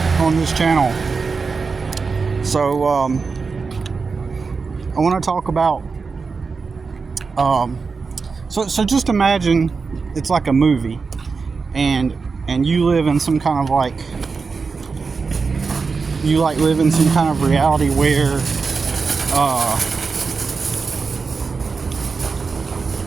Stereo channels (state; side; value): quieter; left; 4.8 dB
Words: on this channel. So I want to talk about so just imagine it's like a movie, and you live in some kind of live in some kind of reality where